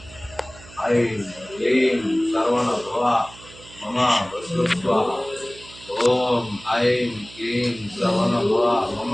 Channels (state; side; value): noise; right; hum, 20 dB below the sound